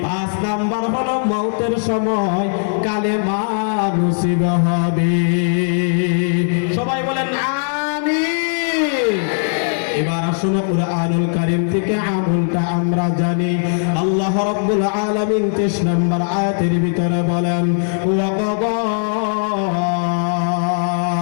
5 নাম্বার হলো মওতের সময় কালেমা নসিব হবে। সবাই বলেন আমিন। এবার আসুন কুরআনুল কারীম থেকে আমলটা আমরা জানি। আল্লাহ রাব্বুল আলামিন 23 নম্বর আয়াতের ভিতরে বলেন, ওয়া কাদা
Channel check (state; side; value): silent; right; digital silence